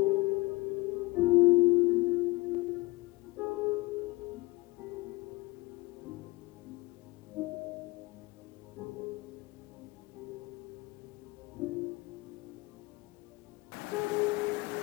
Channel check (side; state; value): right; quieter; 22.6 dB